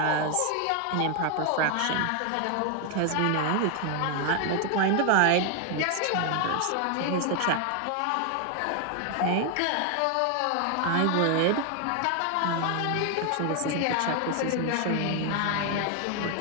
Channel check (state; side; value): different; both; correlation 0.01